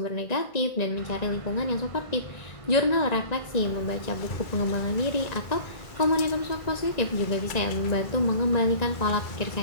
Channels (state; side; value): late; right; 1.9 ms